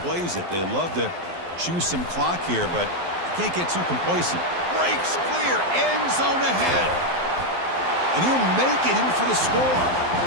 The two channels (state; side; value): late; left; 12 ms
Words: plays it. They love to choose some clock here, but can't get too complacent. Breaks clear, end zone ahead. And he'll make it in for the score.